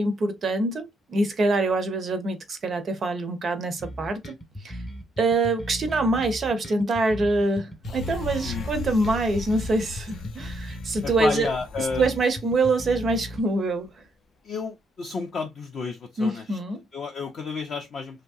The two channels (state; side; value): normal; both; correlation 0.75